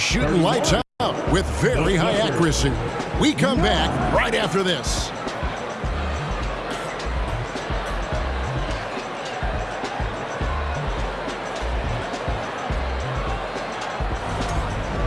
lights out with very high accuracy. We come back right after this.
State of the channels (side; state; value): both; identical; correlation 1.00